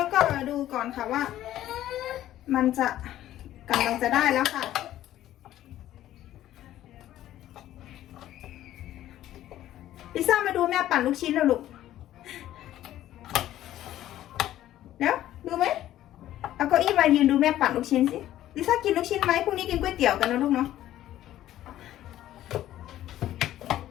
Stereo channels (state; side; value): quieter; right; 13.2 dB